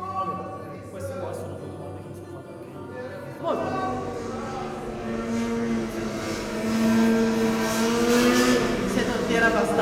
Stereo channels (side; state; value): both; identical; correlation 1.00